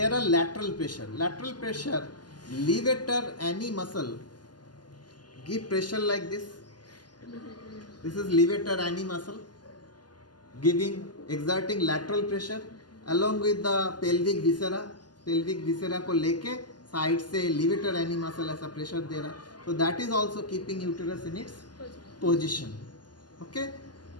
are lateral pressure. Lateral pressure, levator any muscle. Give pressure like this. This is levator any muscle, exerting lateral pressure along with the pelvic viscera. Pelvic viscera को लेके side से levator any muscle ऐसा pressure दे रहा. So that is also keeping uterus in its position. Okay.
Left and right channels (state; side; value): late; right; 0.70 ms